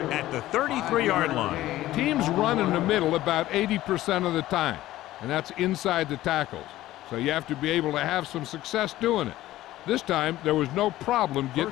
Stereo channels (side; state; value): right; quieter; 15.4 dB